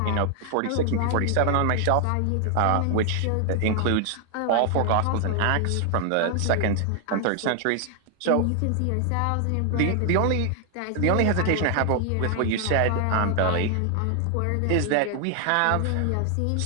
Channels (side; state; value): both; different; correlation 0.00